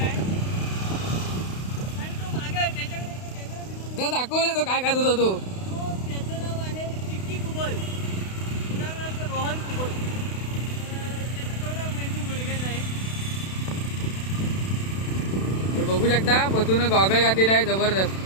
तो दाखवले तो काय खात होता तो. त्याचं नाव आहे चिक्की कुबल, उदाहरणार्थ रोहन कुबल. त्याचा थोडा मेंदू गुडघ्यात आहे. हे बघू शकता पतून गॉगल घातलेला आहे जबरदस्त.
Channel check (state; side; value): late; right; 32 ms